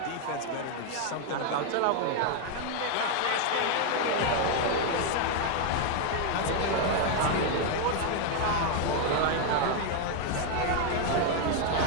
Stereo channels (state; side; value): different; both; correlation 0.01